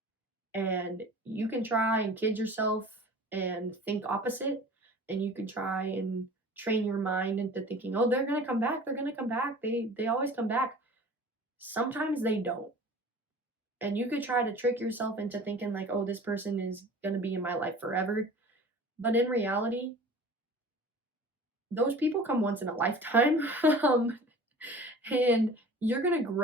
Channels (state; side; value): normal; both; correlation 0.42